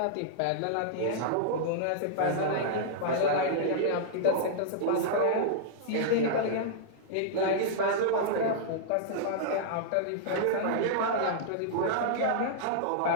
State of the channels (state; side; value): different; both; correlation -0.02